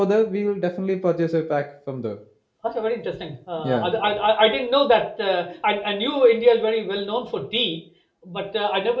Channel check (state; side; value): identical; both; correlation 1.00